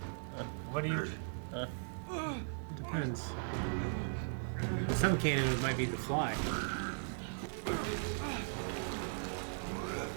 What do you... Depends. Some canon it might be the Fly.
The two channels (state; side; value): silent; left; digital silence